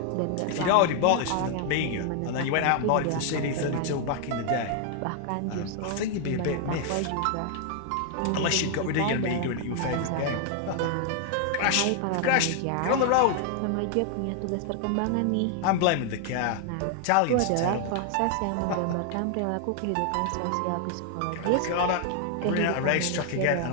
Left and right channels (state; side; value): different; both; correlation 0.00